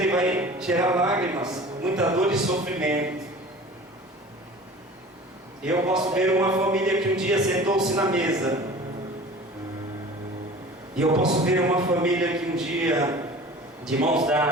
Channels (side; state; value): both; normal; correlation 0.41